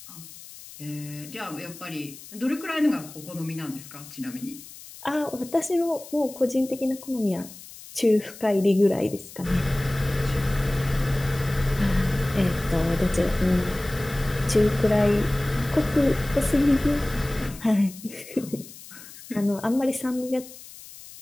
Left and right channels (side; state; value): left; noise; hiss, 17 dB below the sound